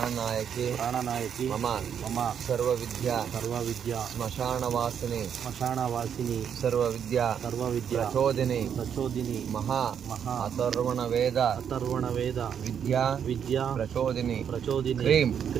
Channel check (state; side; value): quieter; left; 8.2 dB